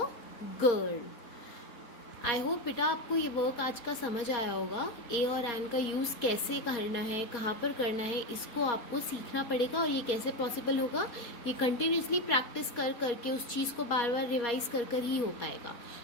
girl. I hope बेटा आपको ये work आज का समझ आया होगा। ए और N का यूज़ कैसे करना है, कहाँ पर करना है, इसको आपको सीखना पड़ेगा। और ये कैसे पॉसिबल होगा, ये कंटिन्यूसली प्रैक्टिस कर करके उस चीज़ को बार बार रिवाइज कर कर ही हो पाएगा।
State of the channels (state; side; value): late; right; 4.3 ms